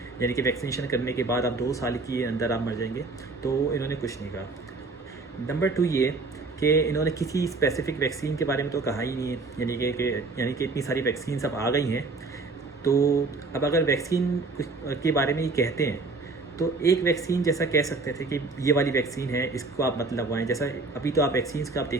यानी कि वैक्सीनेशन करने के बाद आप 2 साल के अंदर आप मर जाएंगे, तो इन्होंने कुछ नहीं कहा। नंबर 2 ये कि इन्होंने किसी स्पेसिफिक वैक्सीन के बारे में तो कहा ही नहीं है, यानी कि इतनी सारी वैक्सीन अब आ गई हैं। तो अब अगर वैक्सीन के बारे में ही कहते हैं तो एक वैक्सीन जैसा कह सकते थे कि ये वाली वैक्सीन है, इसको आप मत लगवाएं। जैसा अभी तो आप वैक्सीन्स का आप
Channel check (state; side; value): quieter; left; 3.7 dB